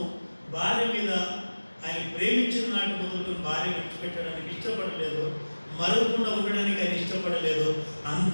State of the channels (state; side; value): inverted; both; correlation -1.00